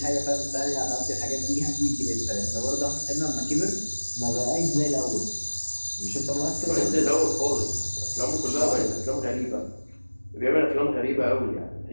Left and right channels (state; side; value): inverted; both; correlation -1.00